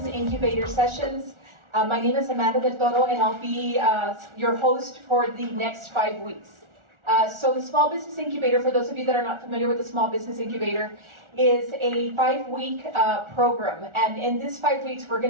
Incubator Sessions. My name is Amanda Del Toro, and I'll be your host for the next 5 weeks. So the Small Business Incubator, for those of you that are not familiar with the Small Business Incubator, is a 5-week program. And in this 5 weeks, we're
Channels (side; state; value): left; late; 1.4 ms